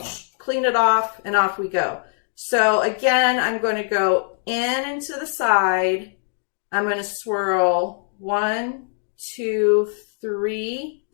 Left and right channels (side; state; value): right; silent; digital silence